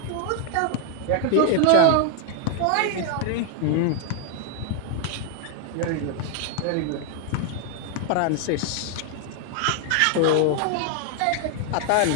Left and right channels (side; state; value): both; different; correlation 0.00